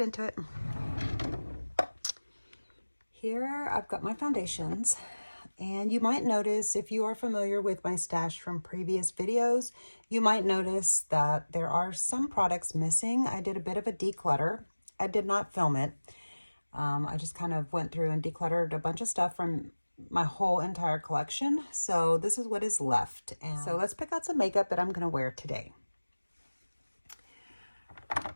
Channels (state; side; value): inverted; both; correlation -1.00